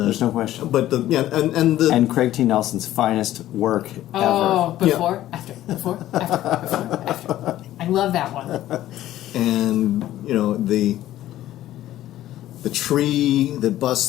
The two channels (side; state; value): right; quieter; 13.8 dB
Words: no question. But the And Craig T. Nelson's finest work Oh, ever. before, after, before, after. I love that one. and the tree that